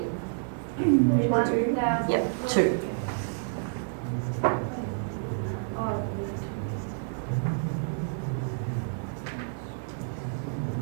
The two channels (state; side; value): silent; left; digital silence